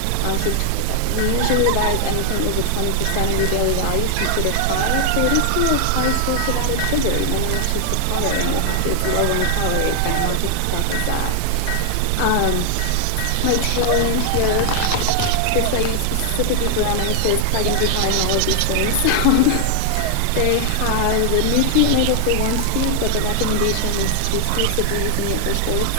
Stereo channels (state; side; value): different; both; correlation 0.00